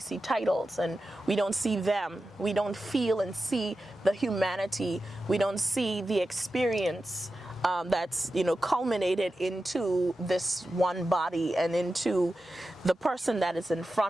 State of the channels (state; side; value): normal; both; correlation 0.92